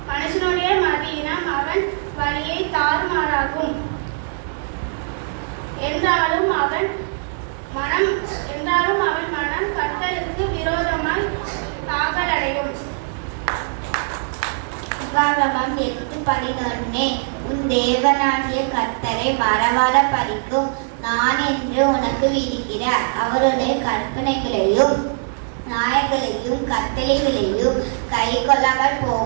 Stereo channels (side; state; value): left; silent; digital silence